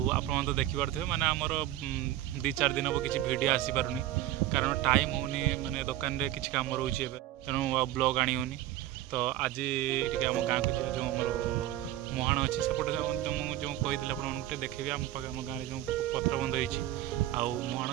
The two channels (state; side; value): quieter; left; 14.0 dB